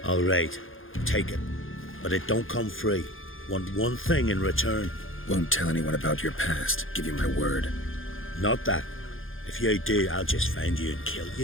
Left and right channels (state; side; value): late; right; 0.59 ms